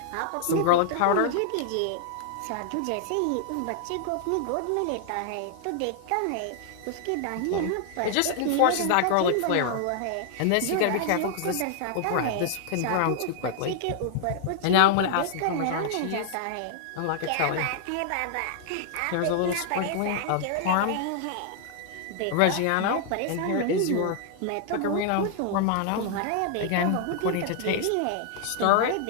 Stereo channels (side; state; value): both; different; correlation -0.01